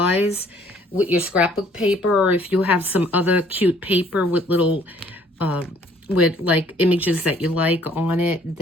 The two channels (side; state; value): both; normal; correlation 0.60